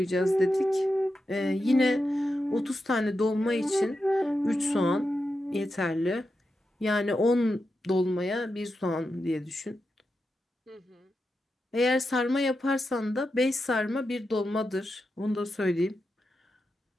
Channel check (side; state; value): both; normal; correlation 0.88